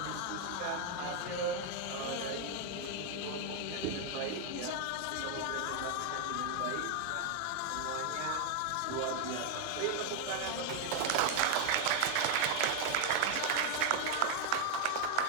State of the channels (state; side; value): different; both; correlation 0.00